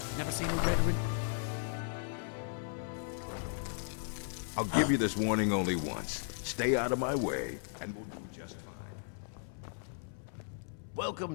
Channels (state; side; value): silent; right; 54 dB below the other